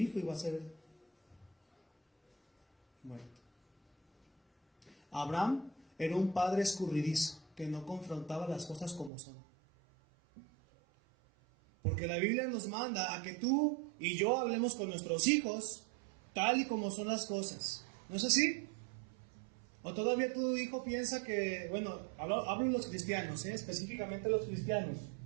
iba a ser muerto. Abraham era un padre escurridizo que no confrontaba las cosas como son. Porque la Biblia nos manda a que tú y yo hablemos con nuestros hijos tal y como son las cosas. ¿No es así? ¿O todavía tu hijo piensa que, bueno, hablo en los cristianos, específicamente los cristianos,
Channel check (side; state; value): left; drops out; at 9.1 s